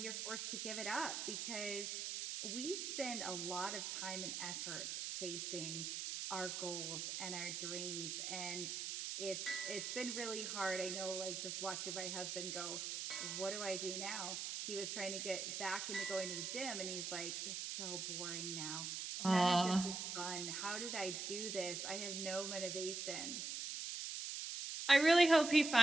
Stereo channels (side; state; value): right; noise; hiss, 3 dB below the sound